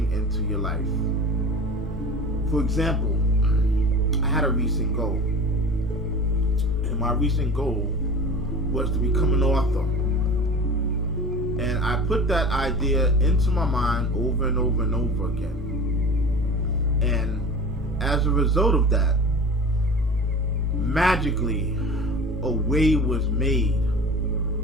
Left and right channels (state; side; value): normal; both; correlation 0.37